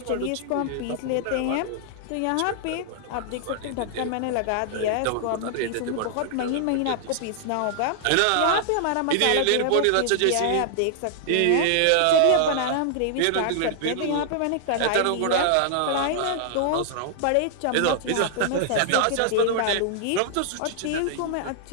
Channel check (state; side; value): different; both; correlation -0.01